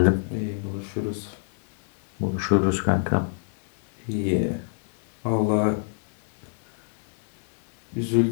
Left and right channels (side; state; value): right; silent; digital silence